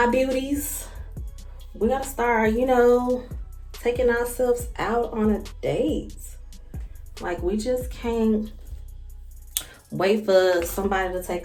beauties, we gotta start, taking ourselves out on a date. Like, we just can't wait for somebody to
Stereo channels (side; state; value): both; identical; correlation 1.00